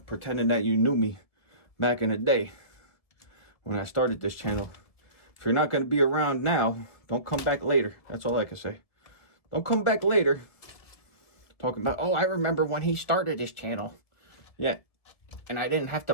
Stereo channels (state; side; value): late; right; 1.7 ms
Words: pretending that you knew me back in the day when I started this channel. If you're not going to be around now, don't come back later. That's all I can say. Don't come back later talking about, oh, I remember when he started his channel. Yeah, And I didn't have to